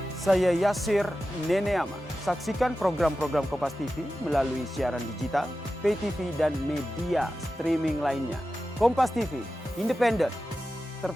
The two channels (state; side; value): normal; both; correlation 0.93